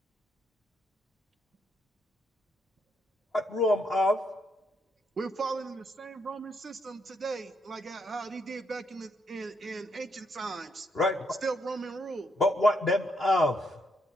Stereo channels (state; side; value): normal; both; correlation 0.76